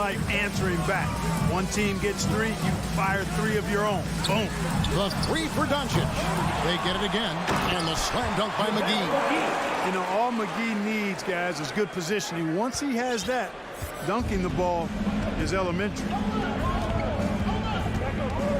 answering back. One team gets 3, you fire 3 of your own. Boom. The 3 for Doncic. They get it again. And the slam dunk by McGee. You know, all McGee needs, guys, is good positioning. Once he has that, dunking the ball is elementary.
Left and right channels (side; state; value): both; identical; correlation 1.00